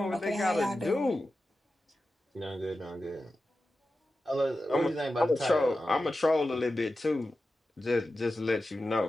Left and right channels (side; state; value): both; normal; correlation 0.93